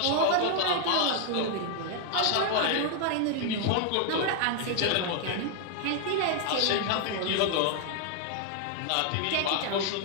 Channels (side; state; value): both; different; correlation 0.00